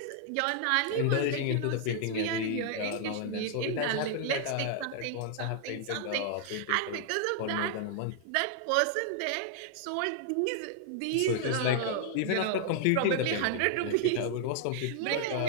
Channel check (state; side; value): different; both; correlation 0.00